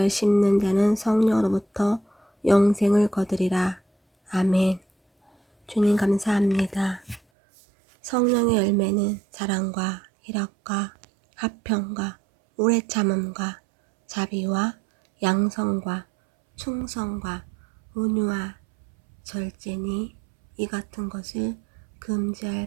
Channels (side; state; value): left; drops out; at 7.2 s